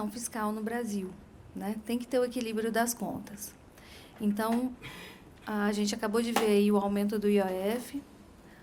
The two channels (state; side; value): identical; both; correlation 1.00